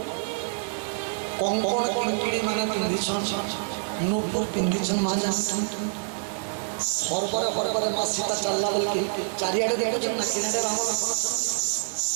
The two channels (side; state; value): left; silent; digital silence